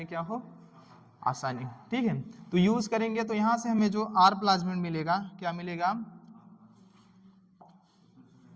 क्या हो, आसानी, ठीक है। तो यूज करेंगे तो यहां से हमें जो आर प्लाज्मिड मिलेगा, क्या मिलेगा,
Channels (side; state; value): both; identical; correlation 1.00